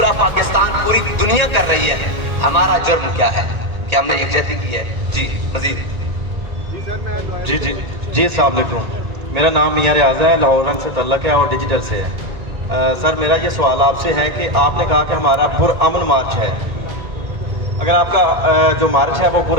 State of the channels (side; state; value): left; late; 2.0 ms